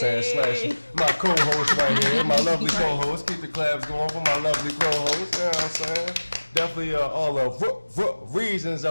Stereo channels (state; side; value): inverted; both; correlation -1.00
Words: Slash my co-host right here, my lovely co-host. Keep the claps going for my lovely co-host. You know what I'm saying? Definitely all of reasons